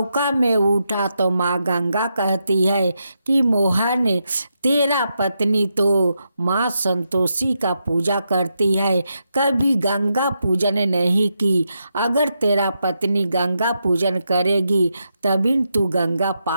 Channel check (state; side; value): inverted; both; correlation -0.84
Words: में उठा तो माँ गंगा कहती है कि मोहन, तेरा पत्नी तो माँ संतोषी का पूजा करती है, कभी गंगा पूजन नहीं की। अगर तेरा पत्नी गंगा पूजन करेगी तभी तू गंगा